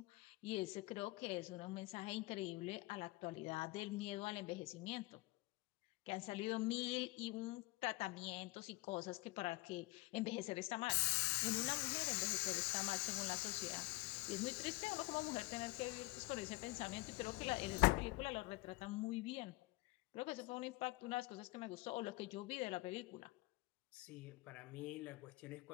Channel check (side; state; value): right; quieter; 22.3 dB